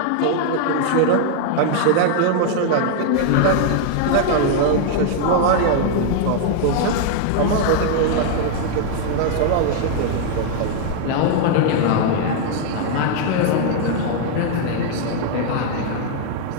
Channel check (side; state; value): both; different; correlation 0.00